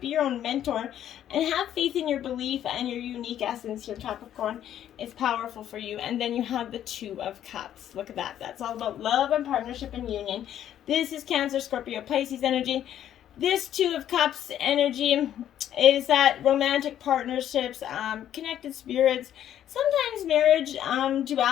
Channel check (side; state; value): right; quieter; 10.9 dB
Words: your own mentor. And have faith in your belief and your unique essence here, Capricorn. It's powerful for you. And then you have the Two of Cups. Look at that. That's all about love and partnership and union. This is Cancer, Scorpio, Pisces energy. This Two of Cups energy is that romantic partnerships, connected spirits, sometimes marriage,